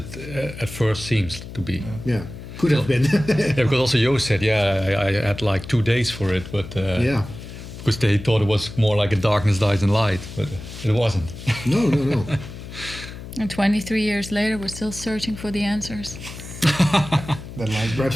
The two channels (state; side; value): noise; left; hum, 12 dB below the sound